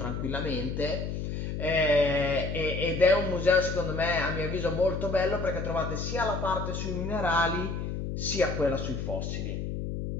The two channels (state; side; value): noise; left; hum, 4 dB below the sound